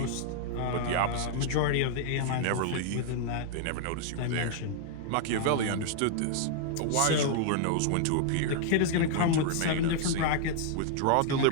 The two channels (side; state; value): both; different; correlation 0.00